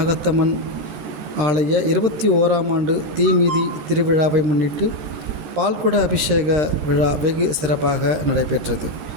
ஆலய 21ஆம் ஆண்டு தீமிதி திருவிழாவை முன்னிட்டு பால்குட அபிஷேக விழா வெகு சிறப்பாக நடைபெற்றது.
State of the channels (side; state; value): left; late; 13 ms